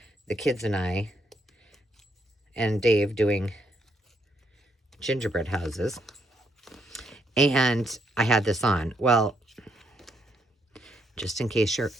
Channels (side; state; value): both; normal; correlation 0.75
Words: the kids and I and Dave doing gingerbread houses. And I had this on. Well, just in case you're